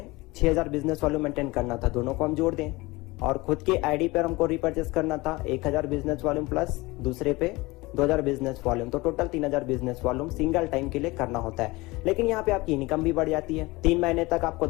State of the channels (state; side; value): quieter; right; 22.2 dB